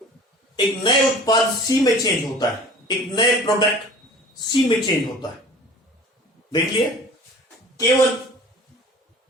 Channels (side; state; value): both; normal; correlation 0.44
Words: एक नए उत्पाद सी में चेंज होता है, एक नए प्रोडक्ट सी में चेंज होता है। देख लिए, केवल